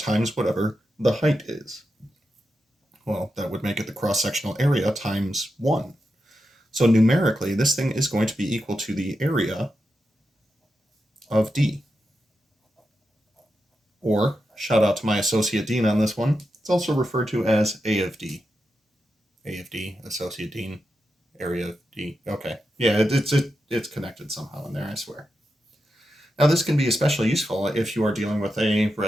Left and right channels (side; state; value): both; normal; correlation 0.88